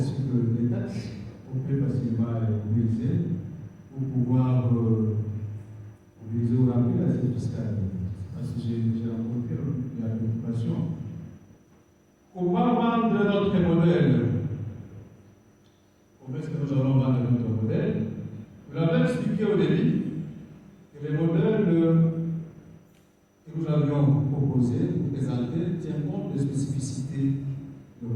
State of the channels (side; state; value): both; identical; correlation 1.00